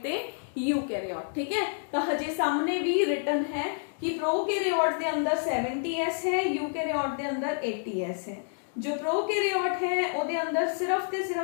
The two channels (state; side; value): silent; right; digital silence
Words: ते यूकैरियोट, ठीक है। तो हजे सामने भी रिटन है कि प्रोकैरियोट के अंदर 70s है, यूकैरियोट के अंदर 80s है। जो प्रोकैरियोट है ਉਹਦੇ अंदर सिर्फ ते